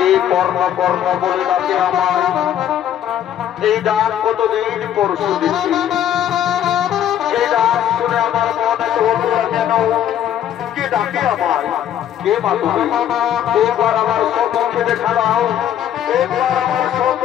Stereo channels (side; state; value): right; quieter; 10.5 dB